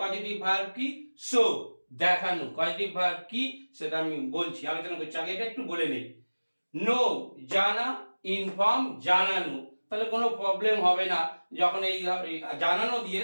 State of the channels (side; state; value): both; inverted; correlation -1.00